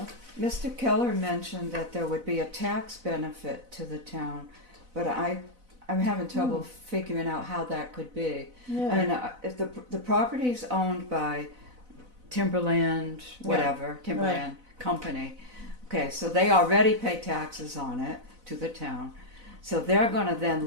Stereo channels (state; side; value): late; left; 4.0 ms